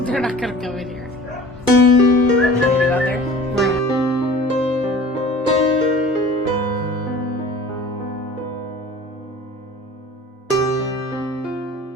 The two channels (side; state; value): both; normal; correlation 0.44